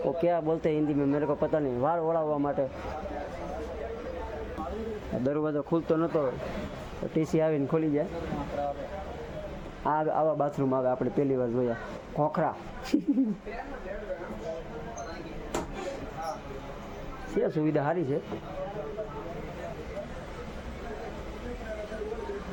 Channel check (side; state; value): both; identical; correlation 1.00